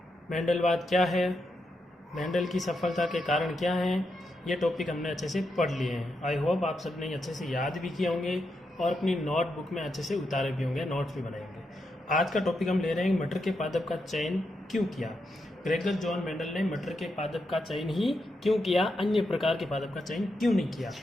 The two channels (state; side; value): normal; both; correlation 0.84